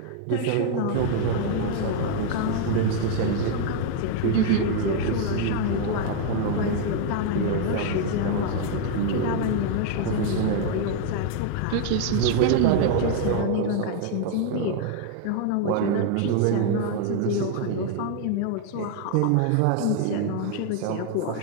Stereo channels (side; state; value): both; different; correlation 0.00